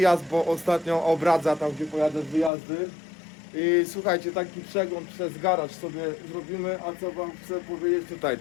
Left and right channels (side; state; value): right; drops out; at 2.5 s